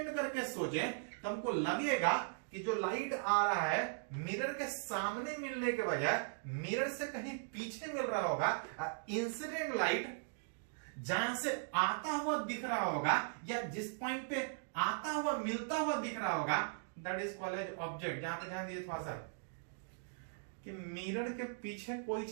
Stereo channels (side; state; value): left; silent; digital silence